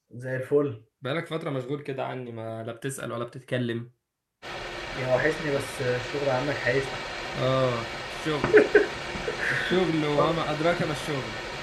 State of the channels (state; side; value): identical; both; correlation 1.00